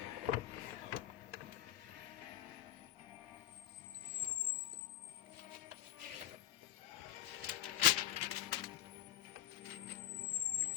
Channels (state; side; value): quieter; right; 13.2 dB